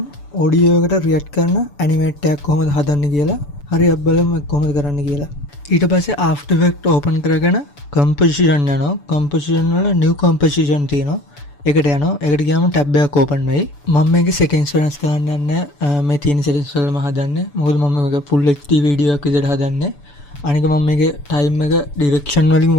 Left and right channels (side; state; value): right; late; 6.9 ms